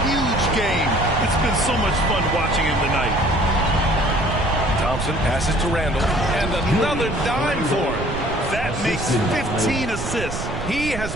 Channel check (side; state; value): right; noise; rumble, 7 dB below the sound